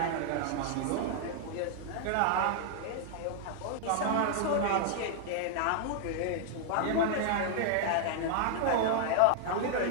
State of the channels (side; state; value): both; different; correlation 0.00